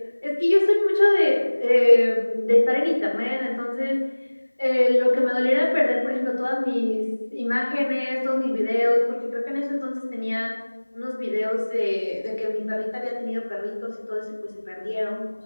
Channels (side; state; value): both; inverted; correlation -1.00